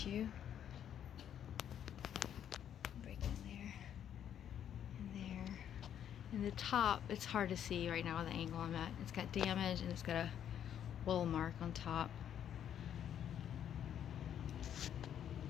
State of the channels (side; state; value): right; quieter; 9.6 dB